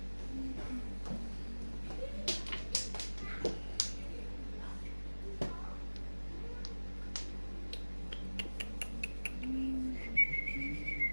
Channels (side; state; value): both; inverted; correlation -1.00